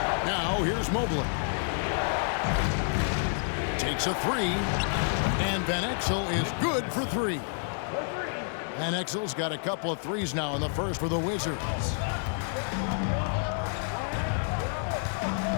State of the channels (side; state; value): right; silent; 59 dB below the other